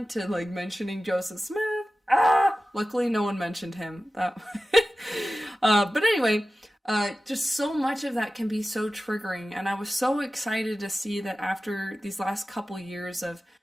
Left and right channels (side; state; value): both; normal; correlation 0.95